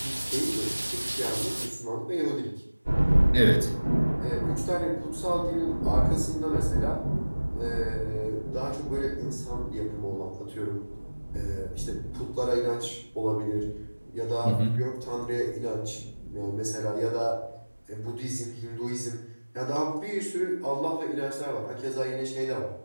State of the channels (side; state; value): both; inverted; correlation -1.00